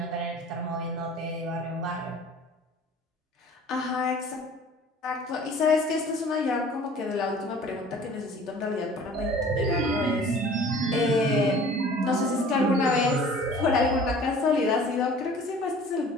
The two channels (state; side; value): normal; both; correlation 0.48